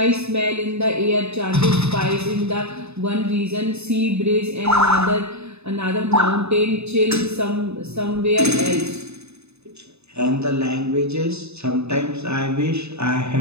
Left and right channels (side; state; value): left; late; 0.80 ms